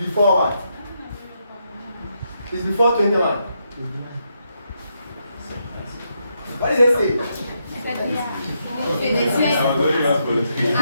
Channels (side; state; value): both; inverted; correlation -0.80